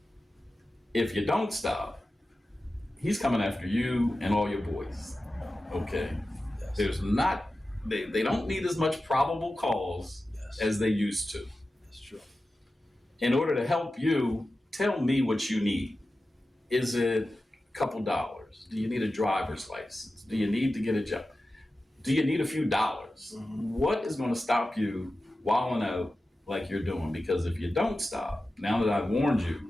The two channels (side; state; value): both; normal; correlation 0.94